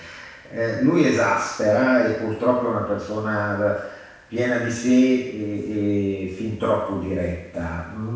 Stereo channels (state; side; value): identical; both; correlation 1.00